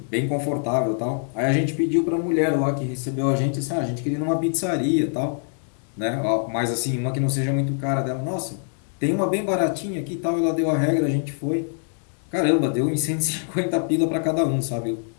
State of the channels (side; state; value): right; silent; digital silence